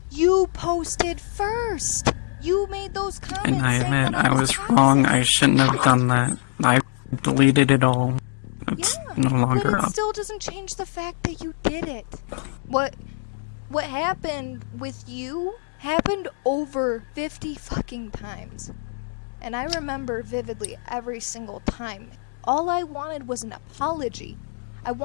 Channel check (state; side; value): silent; right; digital silence